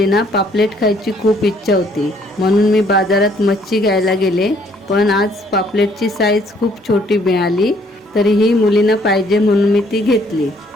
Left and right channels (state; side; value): normal; both; correlation 0.64